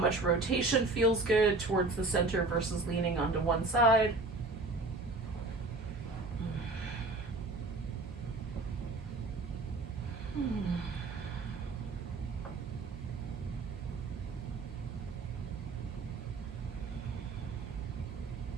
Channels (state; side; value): quieter; left; 3.4 dB